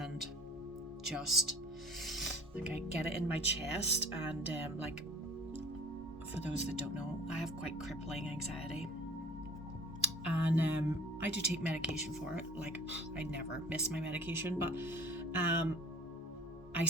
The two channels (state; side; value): normal; both; correlation 0.46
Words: just like I get it in my chest and for those that don't know, I have quite crippling anxiety. And I do take medication for it. Like I never miss my medication, but I